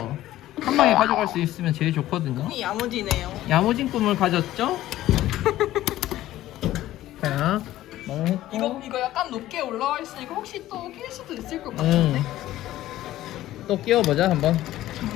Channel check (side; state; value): right; quieter; 14.6 dB